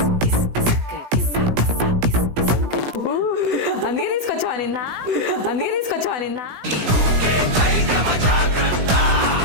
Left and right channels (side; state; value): left; late; 17 ms